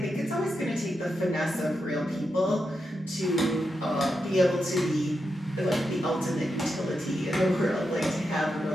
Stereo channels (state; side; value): normal; both; correlation 0.86